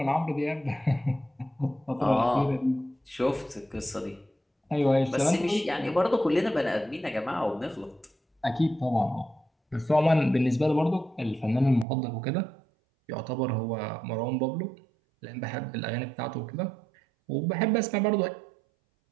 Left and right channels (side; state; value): left; drops out; at 11.9 s